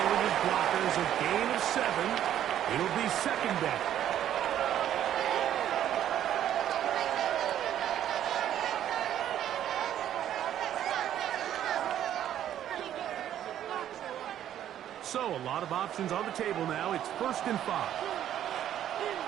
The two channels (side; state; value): left; quieter; 11.0 dB